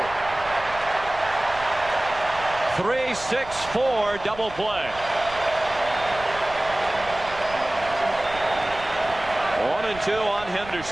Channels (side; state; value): right; noise; rumble, 16 dB below the sound